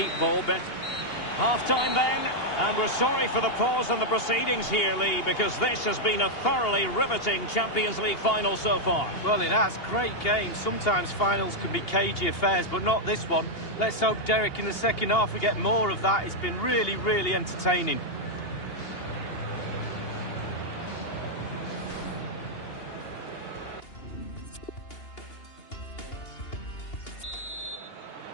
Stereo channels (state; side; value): late; right; 2.8 ms